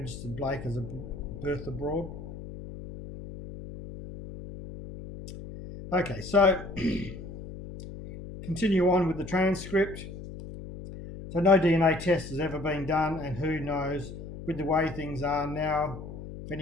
Blake as a birth abroad. Okay, so continue on with the transcript. So no DNA test has ever been done, and who knows, with the way things are now, if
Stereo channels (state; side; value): noise; left; hum, 11 dB below the sound